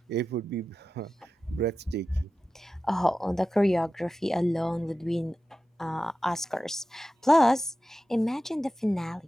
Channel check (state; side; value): normal; both; correlation 0.93